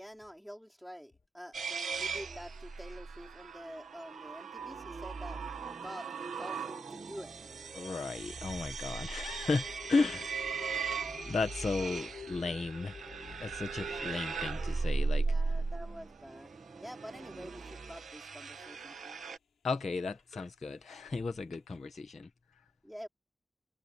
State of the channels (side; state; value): both; normal; correlation 0.85